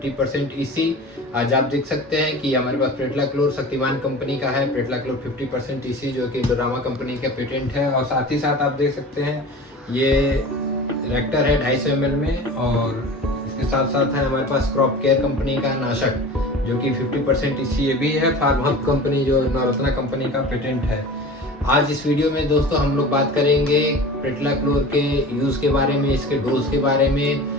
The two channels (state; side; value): normal; both; correlation 0.37